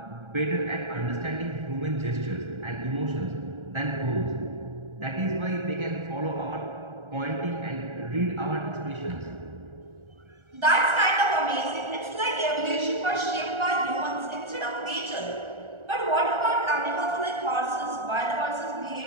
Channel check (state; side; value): late; left; 1.4 ms